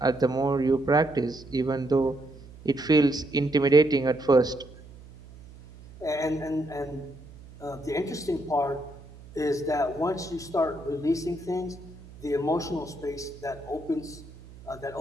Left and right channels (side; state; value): right; noise; hum, 19 dB below the sound